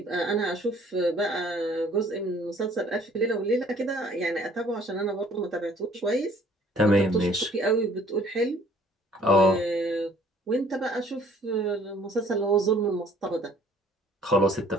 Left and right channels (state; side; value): normal; both; correlation 0.57